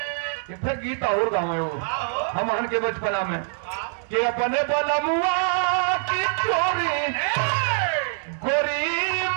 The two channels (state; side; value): silent; left; 62 dB below the other